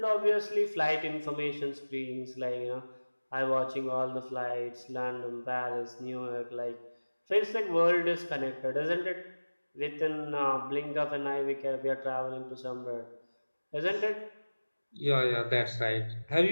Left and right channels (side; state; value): both; inverted; correlation -1.00